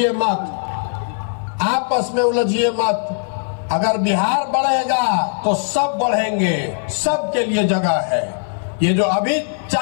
मत, आपस में उलझिए मत। अगर बिहार बढ़ेगा तो सब बढ़ेंगे, सबके लिए जगह है। ये जो अभी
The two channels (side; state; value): right; silent; 57 dB below the other